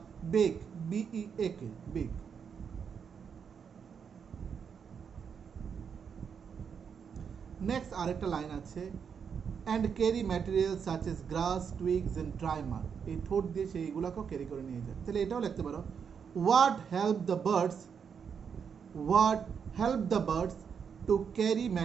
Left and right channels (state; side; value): quieter; left; 6.8 dB